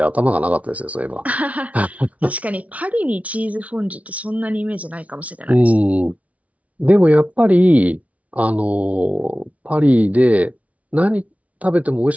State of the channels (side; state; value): left; late; 0.067 ms